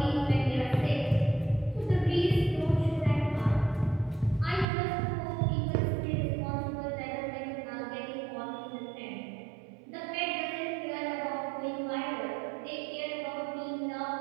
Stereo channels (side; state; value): left; drops out; at 4.7 s